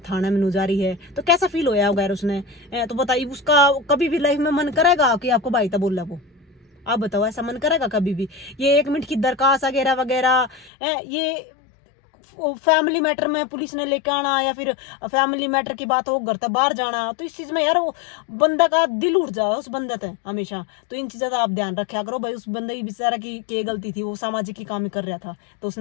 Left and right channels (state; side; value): drops out; right; at 10.7 s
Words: थाना में जारी है, तो कैसा फील होया वगैरह उसने, तो बताइए उसका कभी भी लाइफ में मन करेगा कि आपको भाई था बोला वो, आप बताओ ऐसा मन करेगा कभी भी? ये 1 मिनट की दरखास्त वगैरह वगैरह, ये फैमिली मैटर में पुलिस ने लेके आना या फिर फैमिली मैटर की बात हो घर तक बाहर जाना, तो इस चीज़ में यार वो बंदा का दिल उठ जाए उस बंदे से हमेशा। तो इन चीज़ों का आप ध्यान रखा करो भाई। उस बंदे की बेचारा की गलती थी, वो सामाजिक ही काम ही कर रहा था, तो